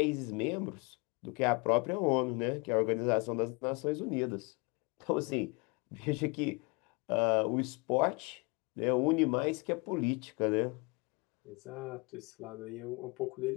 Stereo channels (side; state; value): right; quieter; 29.1 dB